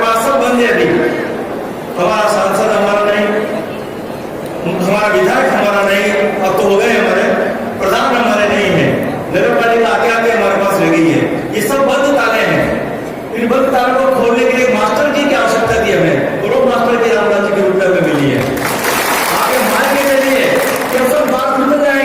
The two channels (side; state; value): both; identical; correlation 1.00